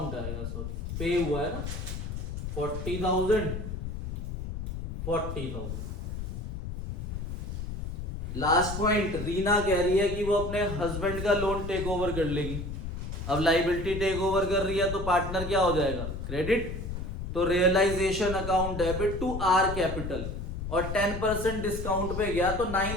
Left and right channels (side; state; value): left; noise; rumble, 5 dB below the sound